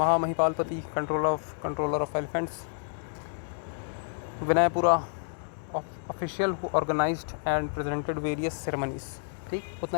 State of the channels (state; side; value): silent; right; digital silence